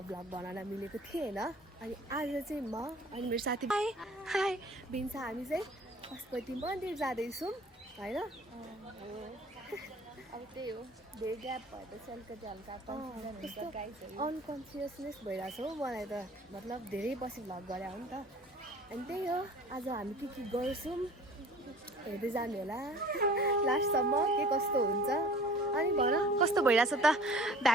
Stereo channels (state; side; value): normal; both; correlation 0.47